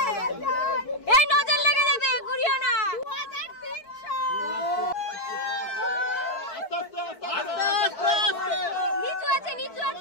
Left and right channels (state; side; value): late; right; 4.5 ms